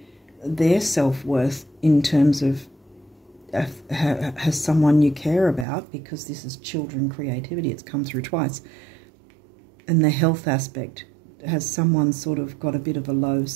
their self-worth in terms of has someone you care about, because this is children creativity, it's come through twice. And the health aspect, has someone sort of got a bit of a low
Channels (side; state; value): left; drops out; at 5.7 s